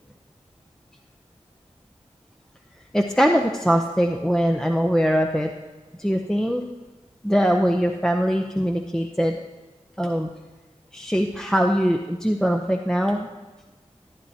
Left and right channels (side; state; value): both; normal; correlation 0.94